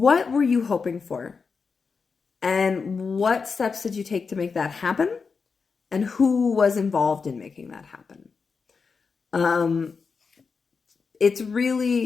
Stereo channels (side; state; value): right; quieter; 5.1 dB